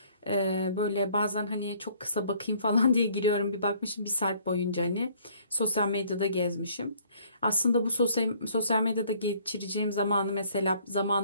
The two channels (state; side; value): inverted; both; correlation -0.60